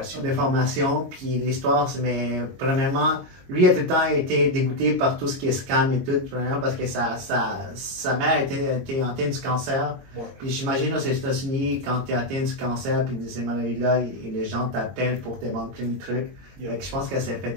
De formation, puis l'histoire, mais premièrement, lui a tout le temps été dégoûté par tout ce qui est scam et tout, premièrement parce que sa mère était atteinte du cancer. Ouais. Puis j'imagine aux États-Unis, quand tu es atteint du cancer, puis de ces maladies-là, et les gens t'appellent pour te vendre plein de trucs. Yeah. Fait que je pense qu'elle s'est fait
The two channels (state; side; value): late; left; 22 ms